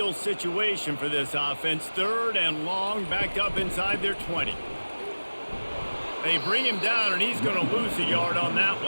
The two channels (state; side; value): inverted; both; correlation -1.00